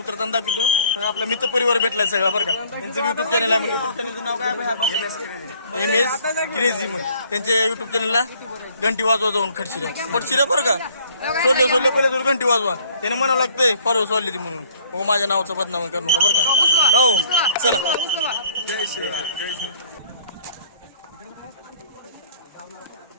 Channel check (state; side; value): inverted; both; correlation -0.58